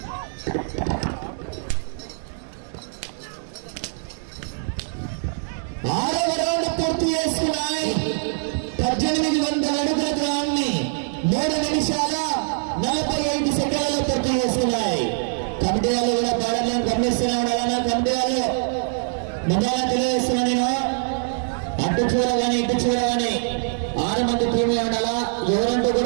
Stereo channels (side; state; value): left; silent; digital silence